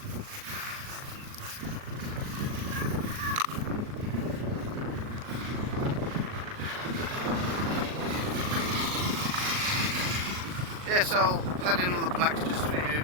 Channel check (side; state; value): left; late; 38 ms